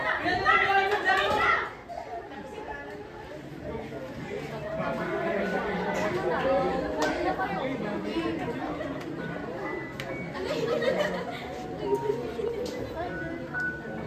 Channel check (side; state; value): both; identical; correlation 1.00